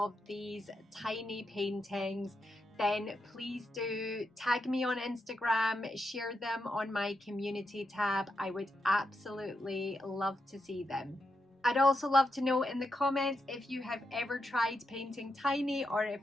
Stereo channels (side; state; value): both; normal; correlation 0.84